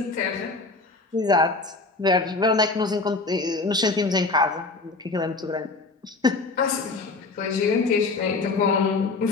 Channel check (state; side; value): quieter; right; 3.7 dB